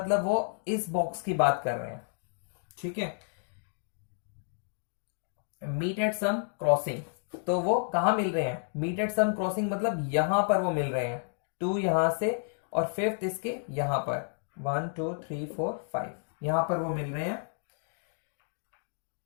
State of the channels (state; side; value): silent; right; digital silence